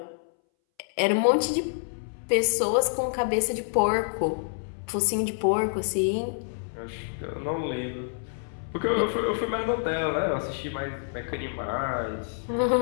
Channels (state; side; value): silent; right; 60 dB below the other